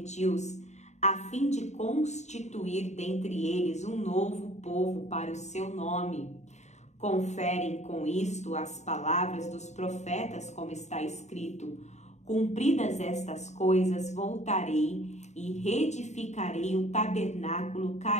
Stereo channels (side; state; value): right; late; 0.33 ms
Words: a fim de constituir dentre eles um novo povo para o seu nome. Conferem com isto as palavras dos profetas, como está escrito: cumpridas estas coisas, voltarei e reedificarei o tabernáculo